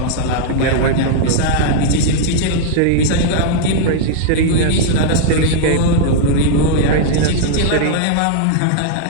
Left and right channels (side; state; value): both; different; correlation -0.01